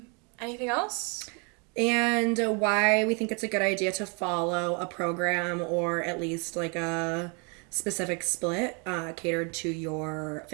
Anything else? And why we think it's a good idea to follow a program or at least like a specific split catered to your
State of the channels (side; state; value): left; quieter; 34.2 dB